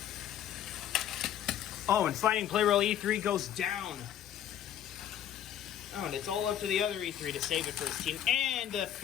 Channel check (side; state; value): right; quieter; 10.7 dB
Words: Oh, and Fighting Plarail E3 goes down. Oh, and it's all up to the other E3 to save it for his team. And the